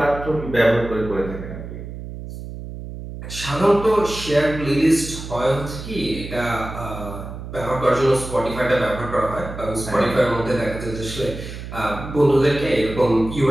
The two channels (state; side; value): noise; right; hum, 10 dB below the sound